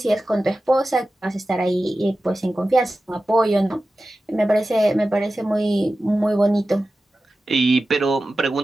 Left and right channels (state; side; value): normal; both; correlation 0.94